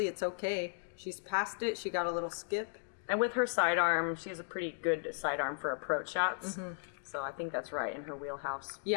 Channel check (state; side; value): silent; right; digital silence